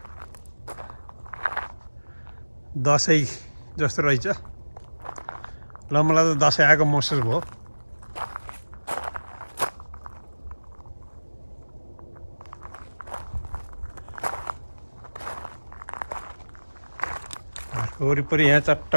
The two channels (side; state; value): both; inverted; correlation -1.00